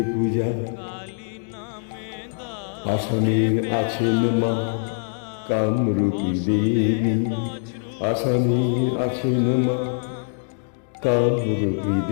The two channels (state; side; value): silent; right; digital silence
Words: পূজা। আসামের আছেন মা কামরূপী দেবী, আসামে আছেন মা কামরূপী